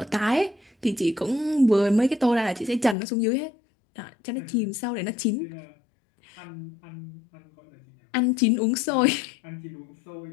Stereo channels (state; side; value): drops out; right; at 3.0 s